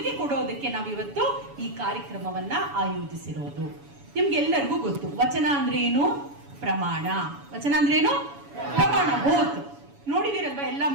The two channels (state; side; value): late; left; 7.1 ms